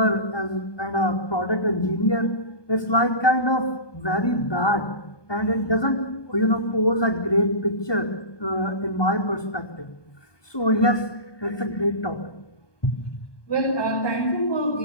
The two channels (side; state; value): right; late; 1.2 ms